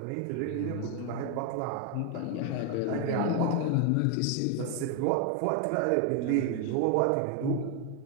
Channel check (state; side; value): different; both; correlation 0.01